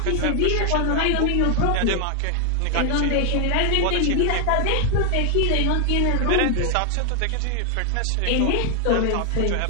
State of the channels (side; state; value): both; different; correlation 0.00